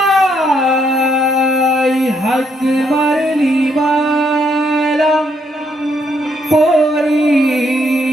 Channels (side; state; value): both; normal; correlation 0.73